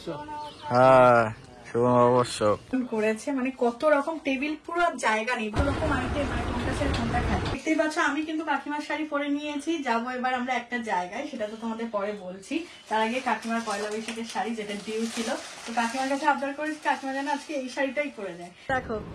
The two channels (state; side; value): identical; both; correlation 1.00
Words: হ্যাঁ শুভ অবশ্য করেছে, মানে কত রকম টেবিল, পুরো জায়গা নেই, দু রকম আইটেম, মানে কোনটা ছেড়ে কোনটা খাই। দেখতেই পাচ্ছ আমি কিন্তু কাকিমার শাড়ি পরে নিয়েছি। যাবো এবার আমরা একটা জায়গায়, সেটা তো তোমাদের পরে বলছি। তার আগে কাকিমার পয়লা বৈশাখের শাড়ি যেটা ডিউ ছিল, তো কাকিমার কাছে আবদার করেছি কাকিমা যেন আজকে এই শাড়িটাই পরে দেয়। দেখো